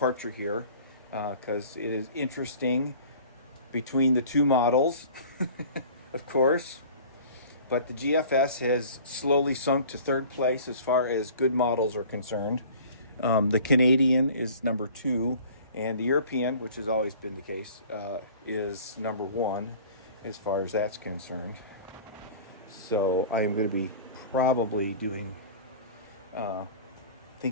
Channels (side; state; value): both; inverted; correlation -0.45